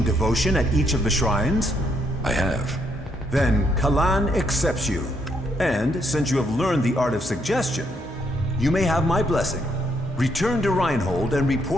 devotion at each of the shrines? I have. Then Kalan accepts you. And since you have learned the art of suggestion, you may have my blessing. Return to Reinhold and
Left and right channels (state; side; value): normal; both; correlation 0.74